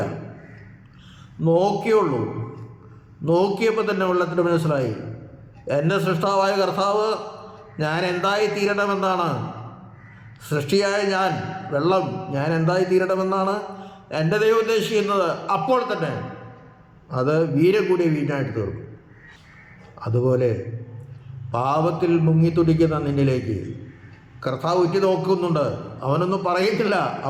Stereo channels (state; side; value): identical; both; correlation 1.00